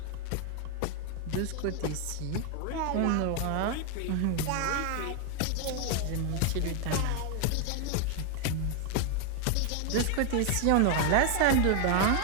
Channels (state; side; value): different; both; correlation 0.00